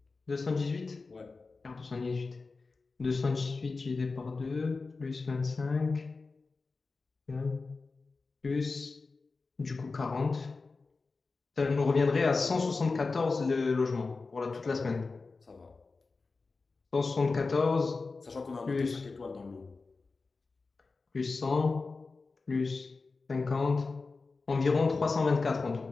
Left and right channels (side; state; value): right; quieter; 4.0 dB